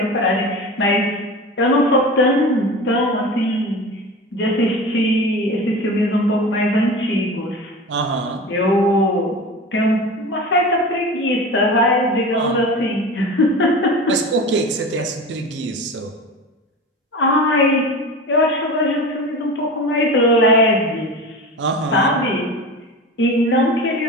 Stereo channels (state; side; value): normal; both; correlation 0.31